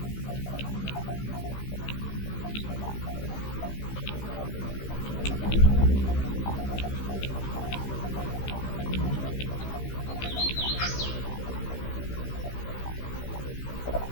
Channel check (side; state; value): right; late; 15 ms